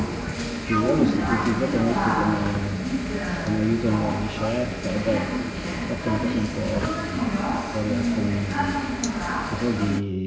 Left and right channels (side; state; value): both; identical; correlation 1.00